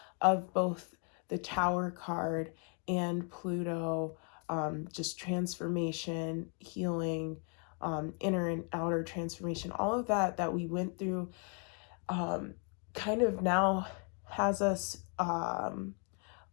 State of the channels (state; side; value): quieter; right; 39.7 dB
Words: of both the Tower card and Pluto, just transformation, healing, inner and outer transformation, all of that we went through kind of now has us a